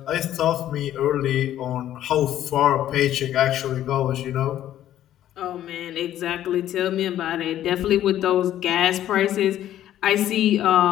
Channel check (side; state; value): right; quieter; 12.1 dB